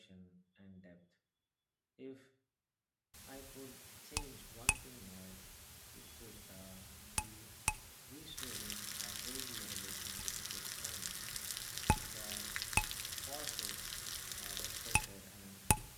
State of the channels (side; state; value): both; identical; correlation 1.00